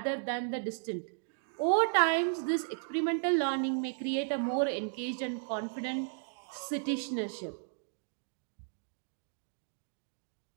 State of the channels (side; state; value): left; silent; digital silence